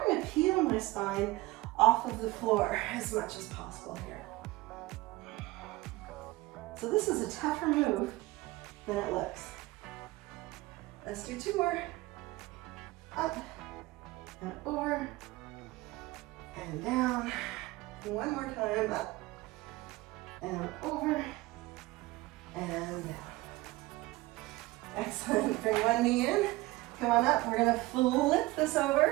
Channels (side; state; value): left; quieter; 19.8 dB